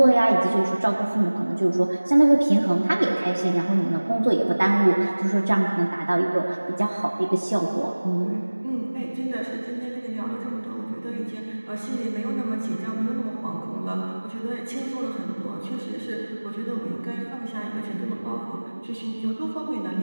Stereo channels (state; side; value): inverted; both; correlation -1.00